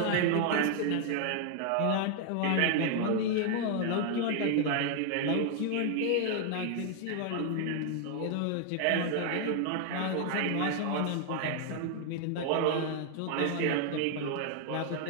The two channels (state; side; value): different; both; correlation 0.00